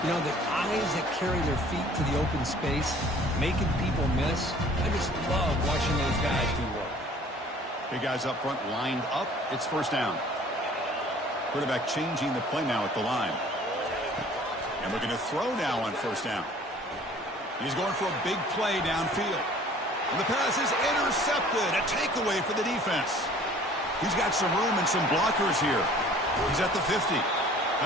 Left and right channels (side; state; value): both; normal; correlation 0.51